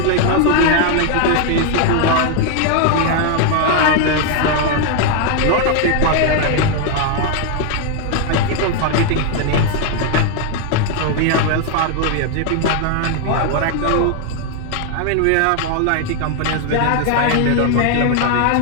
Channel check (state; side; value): different; both; correlation 0.00